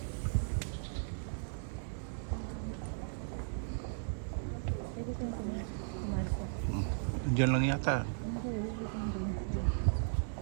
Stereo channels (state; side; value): silent; left; digital silence